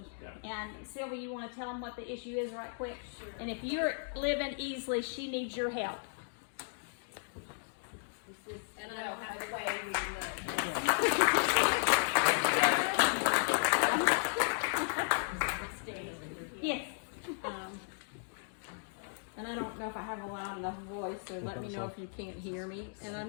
Yeah. And Sylvie, you want to tell them what the issue is right quick? Sure. And if you're living Easley, she needs your help. And I don't have a way Yes. And I don't know if I have a loud enough voice, so let me know if you can't hear me. And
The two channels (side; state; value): right; silent; digital silence